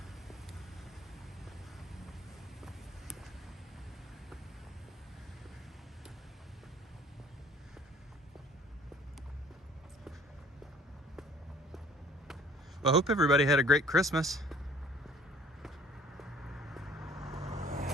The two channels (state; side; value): normal; both; correlation 0.55